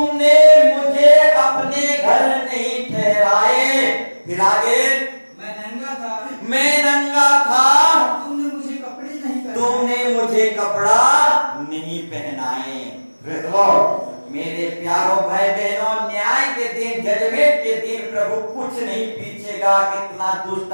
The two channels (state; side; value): inverted; both; correlation -1.00